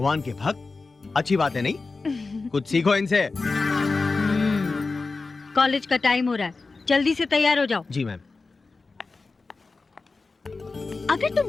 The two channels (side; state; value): right; quieter; 3.9 dB